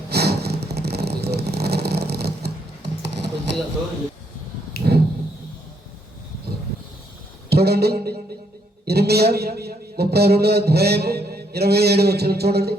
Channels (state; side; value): normal; both; correlation 0.73